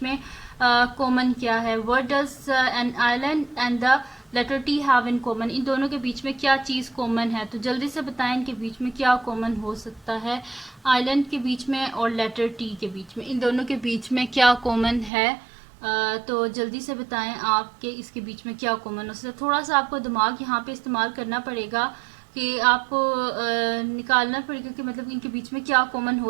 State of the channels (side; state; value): left; drops out; at 15.1 s